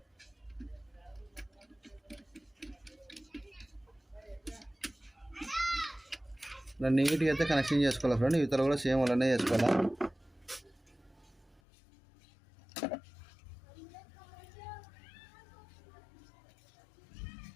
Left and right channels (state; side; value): drops out; right; at 11.6 s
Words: నీట్గా అయితే కనెక్షన్ చేసుకోవాలి ఫ్రెండ్. ఇతర కూడా సేమ్ అలానే చేసుకోవాలా.